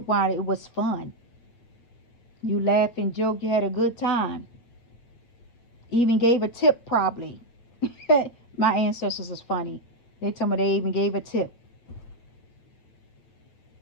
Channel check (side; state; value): right; late; 8.6 ms